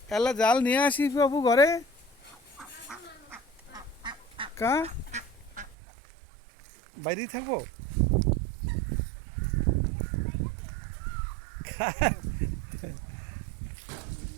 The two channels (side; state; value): left; drops out; at 5.8 s